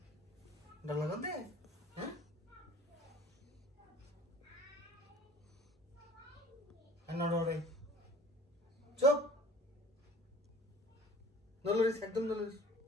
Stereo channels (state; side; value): normal; both; correlation 0.48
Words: ডর লাগতে হ্যাঁ নড়ে চুপ নলরিস একদম নলরিস